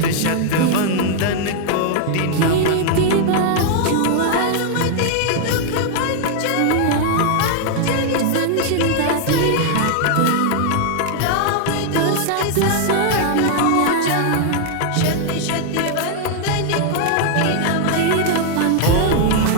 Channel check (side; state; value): both; different; correlation 0.00